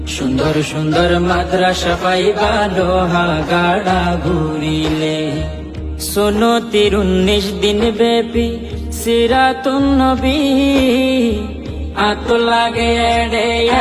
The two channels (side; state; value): both; identical; correlation 1.00